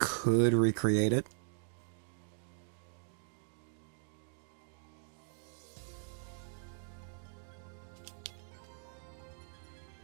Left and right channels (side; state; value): left; silent; 52 dB below the other